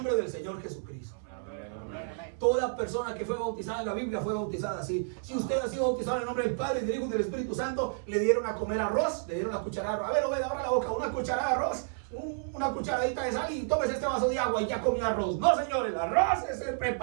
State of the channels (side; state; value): left; silent; 57 dB below the other